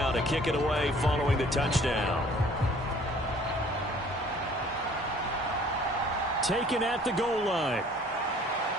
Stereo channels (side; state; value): both; normal; correlation 0.54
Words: to kick it away following the touchdown. Taken at the goal line.